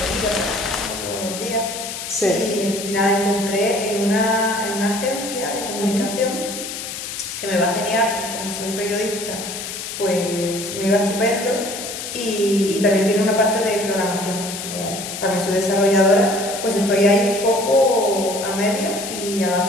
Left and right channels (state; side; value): noise; left; hiss, 7 dB below the sound